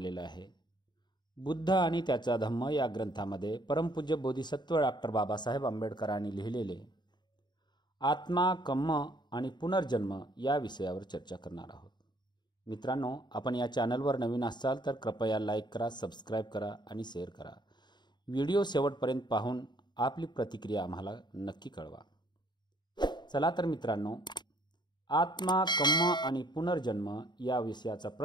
आहे। बुद्ध आणि त्याचा धम्म या ग्रंथामध्ये परमपूज्य बोधिसत्व डॉक्टर बाबासाहेब आंबेडकरांनी लिहिलेले आत्मा, कर्म आणि पुनर्जन्म या विषयावर चर्चा करणार आहोत। मित्रांनो, आपण या चॅनलवर नवीन असाल तर कृपया लाईक करा, सबस्क्राईब करा आणि शेअर करा। व्हिडिओ शेवटपर्यंत पाहून आपली प्रतिक्रिया आम्हाला नक्की कळवा। चला तर मित्रांनो, आत्मा, कर्म आणि पुनर्जन्म या विषयाचा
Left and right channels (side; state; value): right; late; 0.21 ms